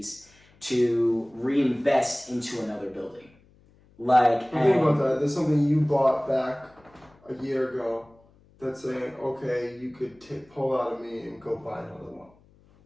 to reinvest into another building. Like, think about that. There's something you bought back a year ago that's saying, okay, you could pull out of me and go buy another one.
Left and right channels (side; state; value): left; noise; hum, 30 dB below the sound